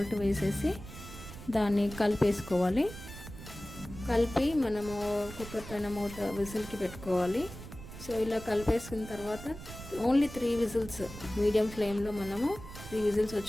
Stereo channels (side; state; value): right; noise; rumble, 13 dB below the sound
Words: వేసేసి దాన్ని కలిపేసుకోవాలి. కలిపి మనము కుక్కర్ పైన మూత విజిల్కి పెట్టుకోవాలి. సో ఇలా కలిపేసుకున్న తర్వాత ఓన్లీ 3 విజిల్స్ మీడియం ఫ్లేమ్లో మనము 3 విజిల్స్